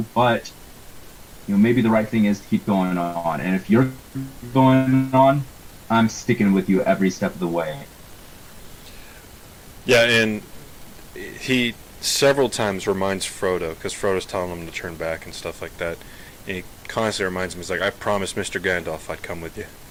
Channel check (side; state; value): both; identical; correlation 1.00